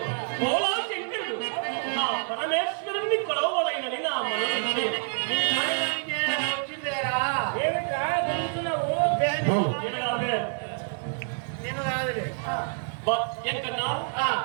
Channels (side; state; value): left; silent; 60 dB below the other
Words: భోలా శంకరుడు, నా పరమేశ్వరుణ్ణి కొలవలైనని నా మనసు వచ్చిందేరా. నేను కాదులే. ఎంకన్నా ఆ,